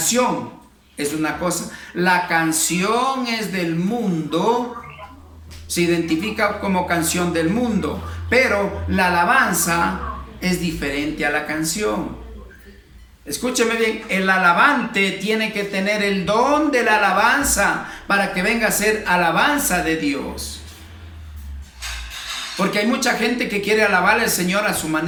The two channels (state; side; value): identical; both; correlation 1.00